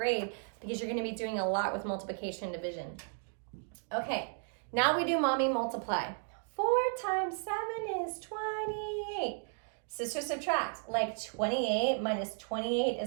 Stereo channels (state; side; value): silent; left; 55 dB below the other